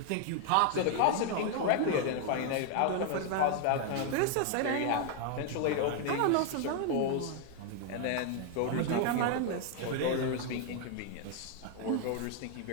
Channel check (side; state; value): both; different; correlation 0.00